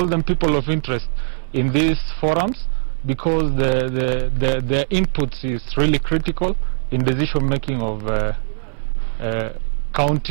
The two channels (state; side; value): silent; left; digital silence